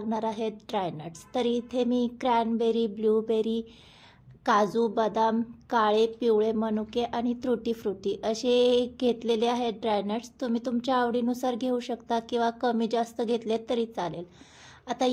आहेत ड्रायनट्स. तर इथे मी क्रॅनबेरी, ब्लूबेरी, काजू, बदाम, काळे, पिवळे मनुके आणि त्रुटी फ्रुटी असे घेतलेले आहेत ड्रायनट्स. तुम्ही तुमच्या आवडीनुसार घेऊ शकता किंवा कमी जास्त घेतले तरी चालेल. आता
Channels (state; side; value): identical; both; correlation 1.00